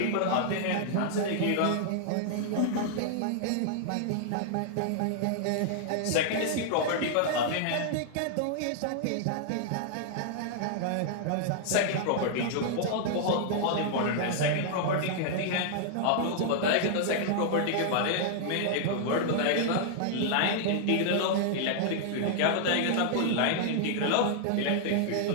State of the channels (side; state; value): both; different; correlation -0.01